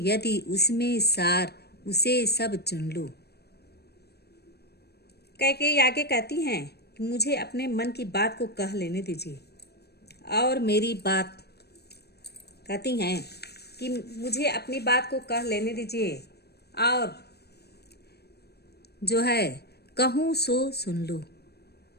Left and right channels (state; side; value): late; right; 0.47 ms